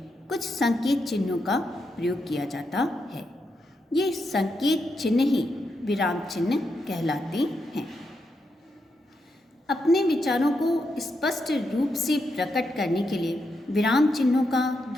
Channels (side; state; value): both; normal; correlation 0.83